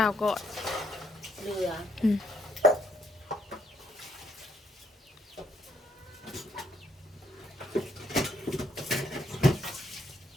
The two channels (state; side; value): normal; both; correlation 0.71